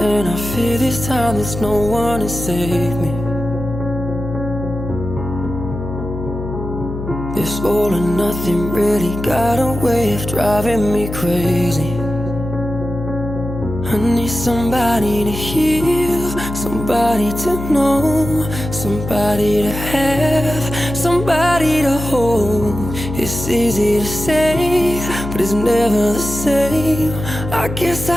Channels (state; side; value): noise; left; hum, 7 dB below the sound